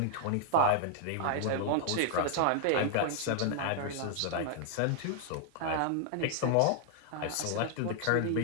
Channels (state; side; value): different; both; correlation -0.01